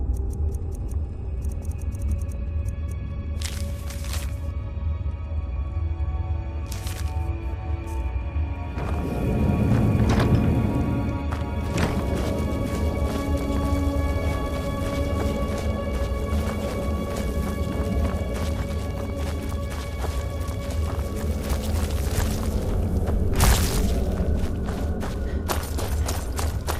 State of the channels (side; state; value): both; identical; correlation 1.00